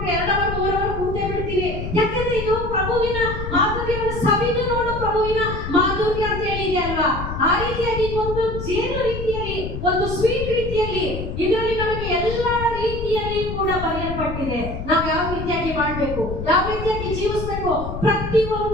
2 ಅವರ್ 3 ಅವರ್ ಕೂತೇ ಬಿಡ್ತೀವಿ. ಯಾಕಂದ್ರೆ ಇದು ಪ್ರಭುವಿನ ಮಾಧುರ್ಯವನ್ನು ಸವಿದು ನೋಡು ಪ್ರಭುವಿನ ಮಾಧುರ್ಯ ಅಂತ ಹೇಳಿದೆ ಅಲ್ವಾ. ಆ ರೀತಿಯಾಗಿ ಒಂದು ಜೇನು ರೀತಿಯಲ್ಲಿ, ಒಂದು ಸ್ವೀಟ್ ರೀತಿಯಲ್ಲಿ ಇದರಲ್ಲಿ ನಮಗೆ ಎಲ್ಲಾ ರೀತಿಯಲ್ಲಿ ಕೂಡ ಬರೆಯಲ್ಪಟ್ಟಿದೆ. ನಾವು ಯಾವ ರೀತಿಯಾಗಿ ಮಾಡಬೇಕು, ಯಾವ ರೀತಿಯಾಗಿ ಜೀವಿಸಬೇಕು,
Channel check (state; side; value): noise; left; rumble, 6 dB below the sound